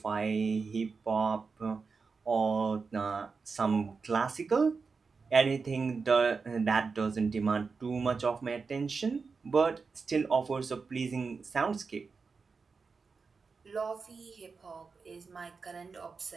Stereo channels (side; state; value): left; quieter; 4.8 dB